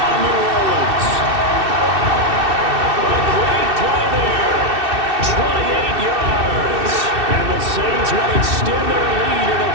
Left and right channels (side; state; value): left; late; 2.6 ms